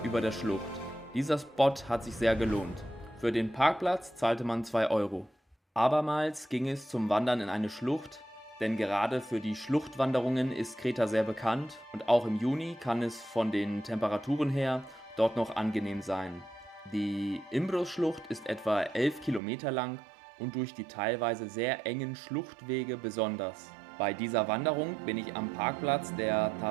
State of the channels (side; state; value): left; drops out; at 19.4 s